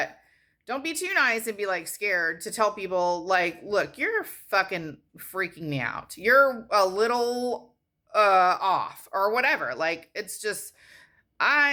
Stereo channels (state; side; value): identical; both; correlation 1.00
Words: don't be too nice and be like scared to tell people like, look, you're fucking freaking me out. You're a little off or whatever. Like, it's just, I